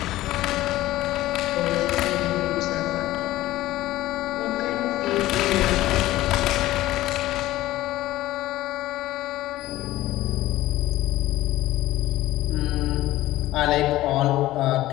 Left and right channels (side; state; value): right; quieter; 16.0 dB